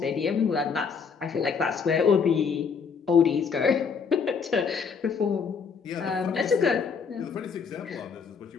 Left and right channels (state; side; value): quieter; right; 5.9 dB